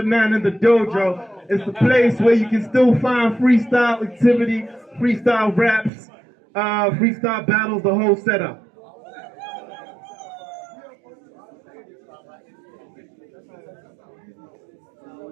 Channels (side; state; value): left; drops out; at 5.9 s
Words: man in the dojo. It's the place where you can still find freestyle activity, freestyle raps, freestyle battles, the whole setup.